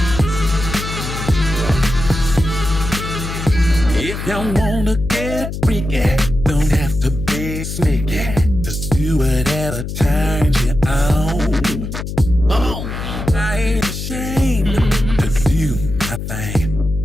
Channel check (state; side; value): noise; left; hum, 6 dB below the sound